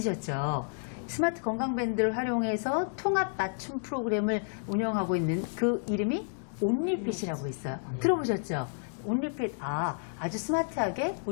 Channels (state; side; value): silent; right; digital silence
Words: 스마트 건강밴드를 활용해서 통합 맞춤 프로그램을 운영하고 있는 그 이름이 온리핏이라고 있어요. 들어보셨죠? 온리핏, 아주 스마트하게